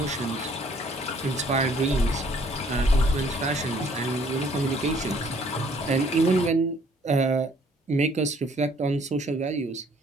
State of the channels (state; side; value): normal; both; correlation 0.60